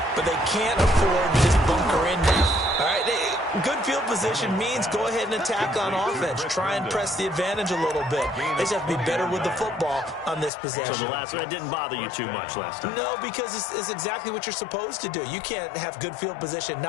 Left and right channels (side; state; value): right; drops out; at 10.5 s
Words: But they can't afford to just bunker in now. All right, good field position means go ahead and attack on offense. Try and press the advantage a little bit. They just have to be better with the football on this possession. So the last one, that didn't bother you too much last time? No, because it's exactly what you're supposed to do. You can't have good field position,